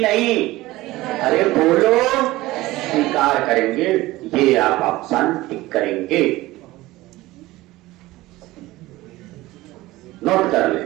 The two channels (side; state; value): left; quieter; 18.4 dB